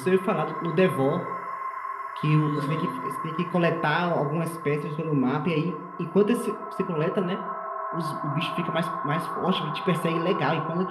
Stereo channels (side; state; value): both; identical; correlation 1.00